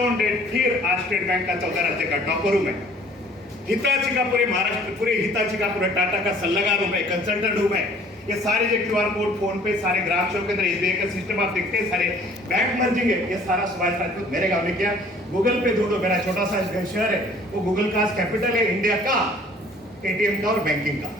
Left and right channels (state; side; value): normal; both; correlation 0.54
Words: डेट फिर आज स्टेट बैंक का 14 राज्य का टॉपर हूँ मैं। हिताची का पूरे महाराष्ट्र, पूरे हिताची का पूरे टाटा का सल्लागार हूँ मैं, कंसल्टेंट हूँ मैं। ये सारे जो QR कोड, फोन पे, सारे ग्राहक सेवा केंद्र, SBI का सिस्टम आप देखते हैं, सारे बैंक मर्जिंग है, ये सारा सुभाष राजपूत मेरे गांव में किया। गूगल पे ढूंढो, मेरा छोटा सा शहर है, वो गूगल का कैपिटल है इंडिया का, ATM का और बैंकिंग का।